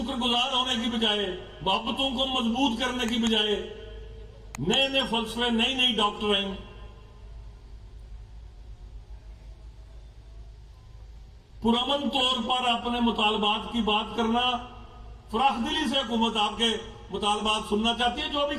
گزار ہونے کی بجائے، محبتوں کو مضبوط کرنے کی بجائے نئے نئے فلسفے، نئی نئی ڈاکٹرائن، پرامن طور پر اپنے مطالبات کی بات کرنا، فراخ دلی سے حکومت آپ کے مطالبات سننا چاہتی ہے. جو بھی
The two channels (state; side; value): identical; both; correlation 1.00